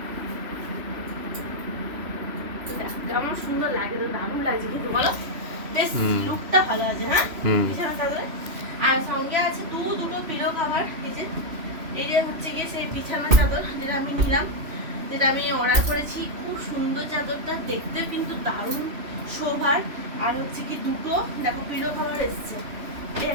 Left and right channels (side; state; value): left; late; 3.0 ms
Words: তো দেখো কেমন সুন্দর লাগে, তো দারুণ লাগছে কিন্তু বলো, বেশ লুকটা ভালো আছে। হ্যাঁ, বিছানা চাদরে আর সঙ্গে আছে দুটো পিলো কভার। এই যে হচ্ছে গিয়ে সেই বিছানা চাদর যেটা আমি নিলাম, যেটা আমি অর্ডার করেছি। খুব সুন্দর চাদরটা, দেখতেও কিন্তু দারুণ শোভার। আর হচ্ছে কি দুটো দেখো পিলো কভার এসছে, এই